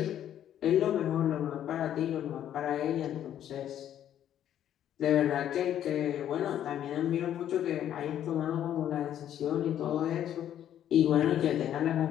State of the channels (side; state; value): right; quieter; 10.7 dB